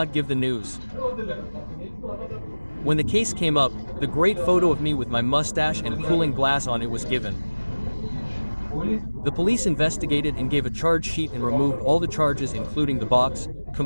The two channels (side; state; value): both; inverted; correlation -1.00